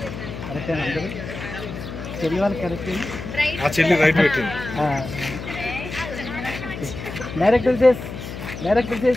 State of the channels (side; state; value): left; noise; hum, 9 dB below the sound